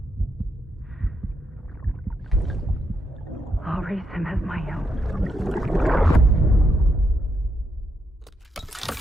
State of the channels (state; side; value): normal; both; correlation 0.80